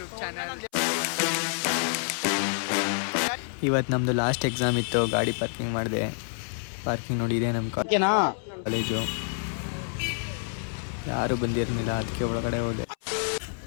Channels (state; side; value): silent; right; 60 dB below the other